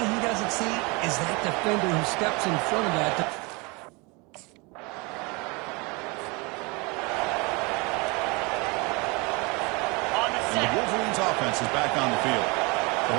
he doesn't see is that defender who steps in front of that. And the Wolverines offense is back on the field. The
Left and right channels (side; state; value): left; quieter; 28.0 dB